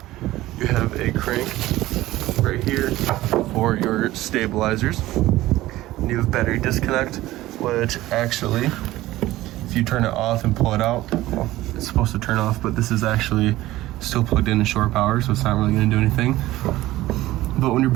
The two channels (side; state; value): left; quieter; 16.6 dB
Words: You have a crank right here for your stabilizers. And you have battery disconnect, which actually, if you turn it off and pull it out, well, it's supposed to turn off, but this is actually still plugged in to shore power, so it's not really going to do anything. But when your